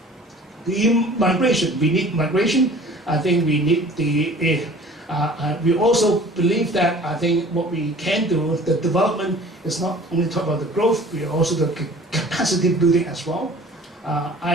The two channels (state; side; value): normal; both; correlation 0.47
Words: The migration, we need migration. I think we need we also believe that I think what we can do, the development is not only talk about the growth, we also the capacity building as well.